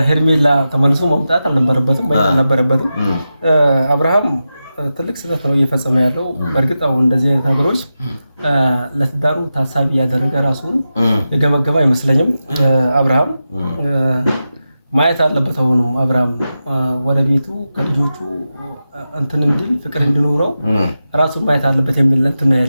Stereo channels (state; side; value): inverted; both; correlation -0.91